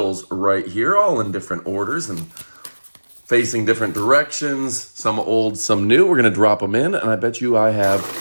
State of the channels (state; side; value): inverted; both; correlation -1.00